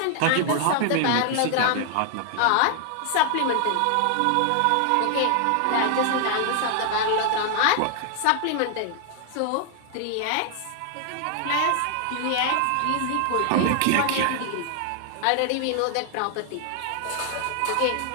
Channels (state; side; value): different; both; correlation 0.00